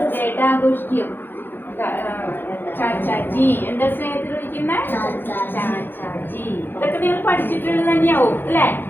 ഡേ ആയിട്ട് ആഘോഷിക്കും. ചാച്ചാജി എന്താ സ്നേഹത്തിൽ വിളിക്കുന്നത്? ചാച്ചാജി. ഇതൊക്കെ നിങ്ങൾ പഠിച്ചിട്ടുള്ളത് തന്നെയാവും അല്ലേ?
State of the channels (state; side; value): late; right; 0.098 ms